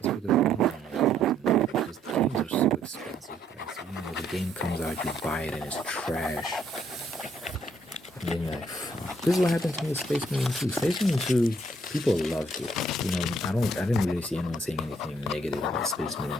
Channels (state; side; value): normal; both; correlation 0.68